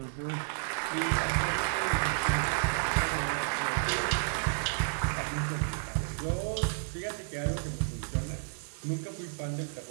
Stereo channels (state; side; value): silent; left; digital silence